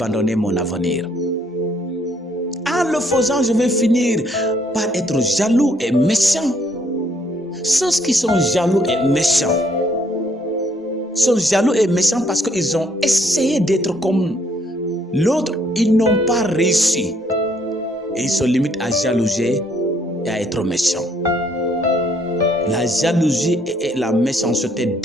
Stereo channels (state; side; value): normal; both; correlation 0.67